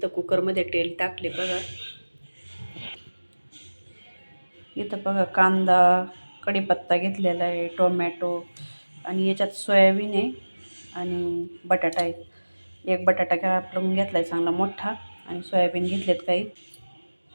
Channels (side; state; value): both; inverted; correlation -1.00